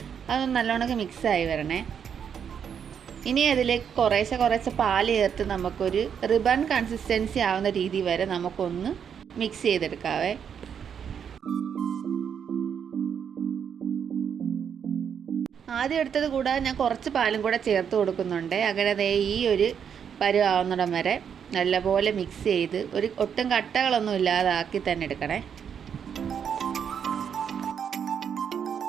അതൊന്ന് നല്ലോണക്ക് മിക്സായി വരണേ. ഇനി അതിലേക്ക് കുറേശ്ശെ പാൽ ചേർത്ത് നമുക്കൊരു റിബൺ കൺസിസ്റ്റൻസി ആവുന്ന രീതി വരെ നമുക്കൊന്ന് മിക്സ് ചെയ്തെടുക്കാവേ. ആദ്യം എടുത്തത് കൂടാതെ ഞാൻ കുറച്ച് പാലും കൂടെ ചേർത്ത് കൊടുക്കുന്നുണ്ട്. അങ്ങനെ ഈ ഒരു പരുവാവുന്നിടം വരെ നല്ലപോലെ മിക്സ് ചെയ്ത് ഒട്ടും കട്ടകളൊന്നും ഇല്ലാതാക്കി തന്നെ എടുക്കണേ.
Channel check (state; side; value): quieter; left; 7.7 dB